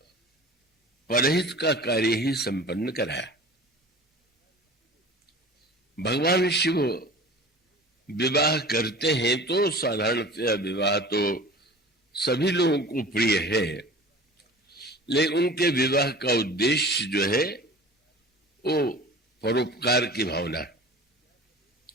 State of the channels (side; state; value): both; normal; correlation 0.40